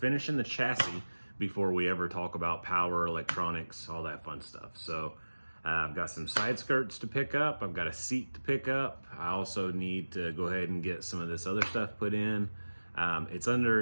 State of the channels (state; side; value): inverted; both; correlation -1.00